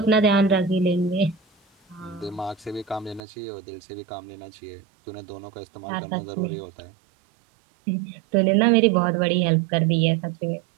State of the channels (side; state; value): left; drops out; at 3.2 s